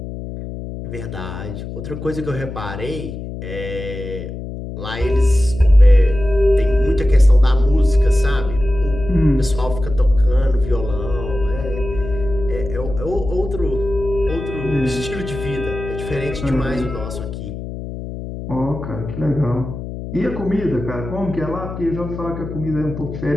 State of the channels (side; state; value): left; noise; hum, 9 dB below the sound